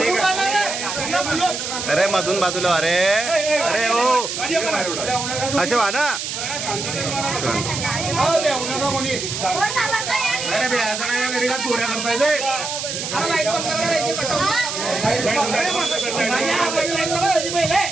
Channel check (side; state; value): right; noise; hiss, 5 dB below the sound